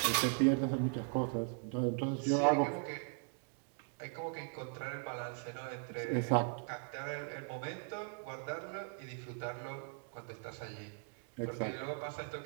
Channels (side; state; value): left; silent; 52 dB below the other